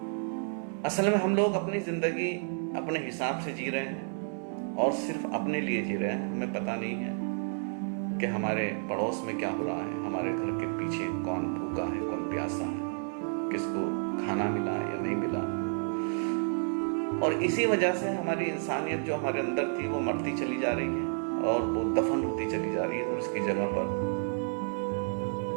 असल में हम लोग अपनी जिंदगी अपने हिसाब से जी रहे हैं और सिर्फ अपने लिए जी रहे हैं। हमें पता नहीं है कि हमारे पड़ोस में क्या हो रहा है, हमारे घर के पीछे कौन भूखा है, कौन प्यासा है, किसको खाना मिला या नहीं मिला। और इसी वजह से हमारी इंसानियत जो हमारे अंदर थी वो मरती चली जा रही है और वो दफन होती चली जा रही है, और इसकी जगह पर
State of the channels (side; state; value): left; silent; 57 dB below the other